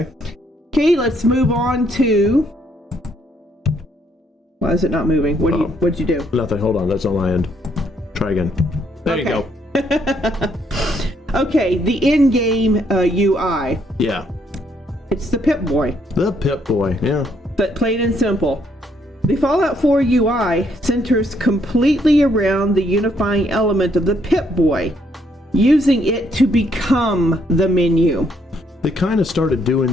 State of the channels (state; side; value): normal; both; correlation 0.71